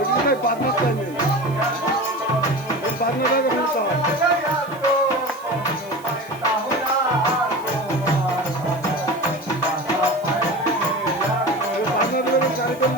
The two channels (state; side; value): noise; right; hiss, 24 dB below the sound